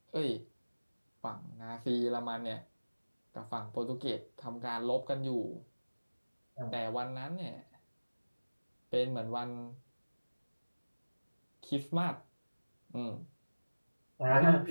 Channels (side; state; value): both; inverted; correlation -1.00